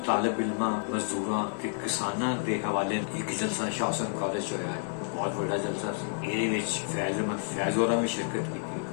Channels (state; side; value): silent; right; digital silence